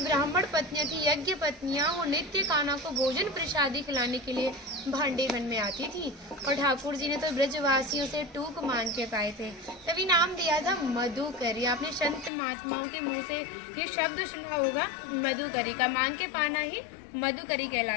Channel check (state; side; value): drops out; right; at 12.3 s